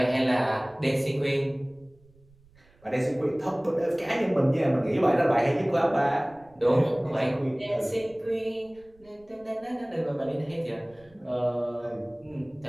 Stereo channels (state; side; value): noise; right; rumble, 29 dB below the sound